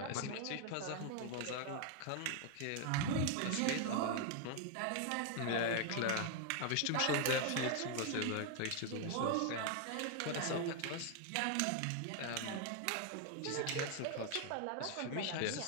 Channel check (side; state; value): both; different; correlation 0.01